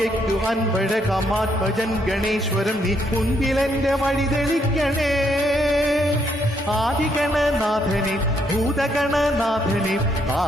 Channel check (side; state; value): both; normal; correlation 0.73